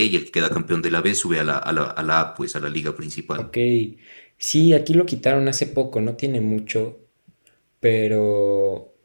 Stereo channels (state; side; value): inverted; both; correlation -1.00